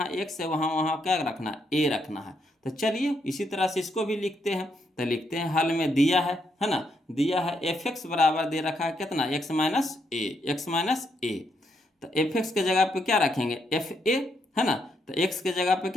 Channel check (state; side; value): normal; both; correlation 0.77